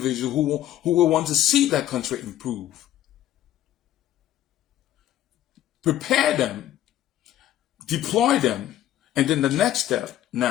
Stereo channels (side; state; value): right; quieter; 12.7 dB